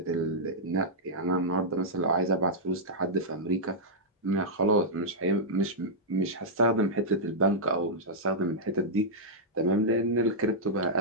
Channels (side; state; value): both; normal; correlation -0.08